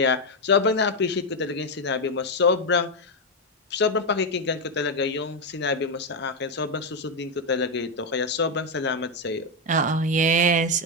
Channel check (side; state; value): both; normal; correlation 0.04